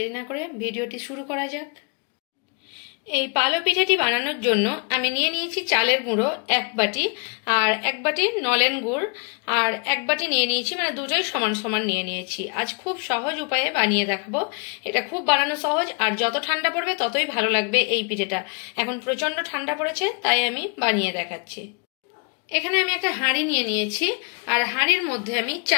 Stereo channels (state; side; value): quieter; right; 36.8 dB